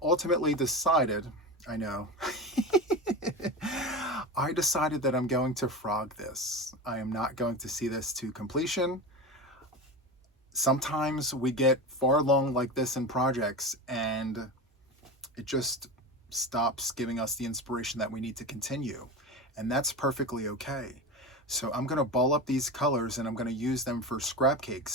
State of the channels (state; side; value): normal; both; correlation 0.25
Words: ultimately decided, I know, I decided that I'm going to frog this. I am not going to see this to completion. Sometimes we get far along like this in projects and it just stops giving us the inspiration that we need to continue. and that's perfectly okay. So I'm going to ball up these colors and I'm going to use them for scrap